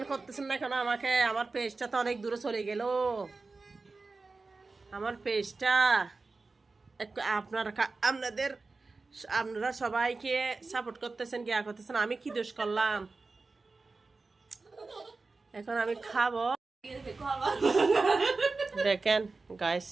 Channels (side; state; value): left; quieter; 3.8 dB